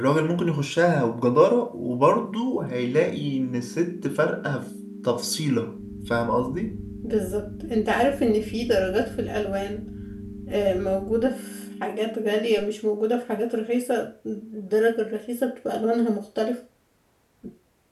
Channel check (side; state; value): both; identical; correlation 1.00